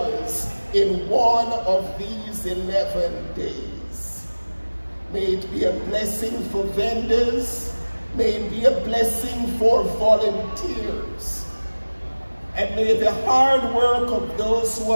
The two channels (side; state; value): both; inverted; correlation -1.00